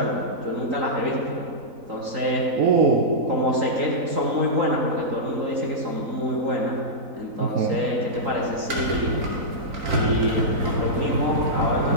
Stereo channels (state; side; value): late; left; 3.9 ms